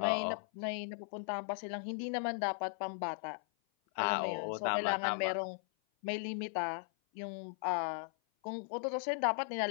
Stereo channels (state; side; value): silent; right; 53 dB below the other